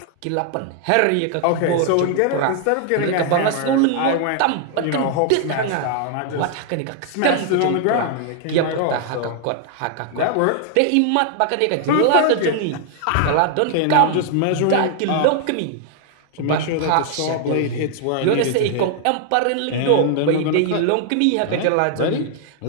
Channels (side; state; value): both; different; correlation 0.00